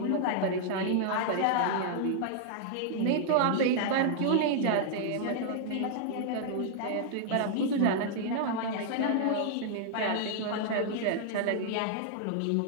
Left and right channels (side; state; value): both; different; correlation -0.01